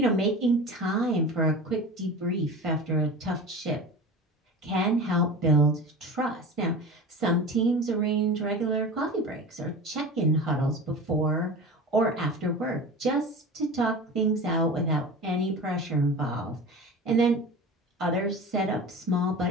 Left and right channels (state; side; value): normal; both; correlation 0.33